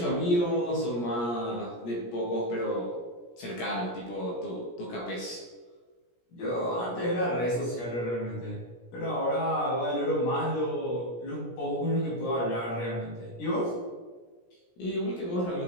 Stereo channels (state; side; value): late; right; 17 ms